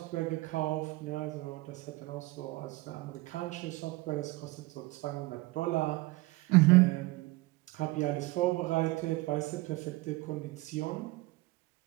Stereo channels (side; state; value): left; quieter; 21.1 dB